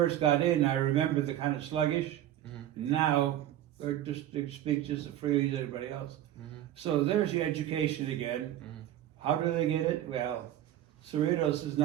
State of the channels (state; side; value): quieter; left; 12.4 dB